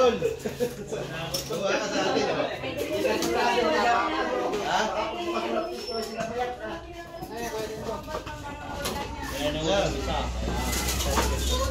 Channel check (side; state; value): both; identical; correlation 1.00